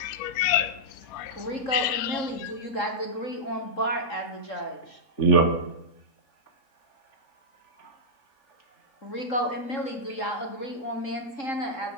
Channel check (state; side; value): late; right; 3.7 ms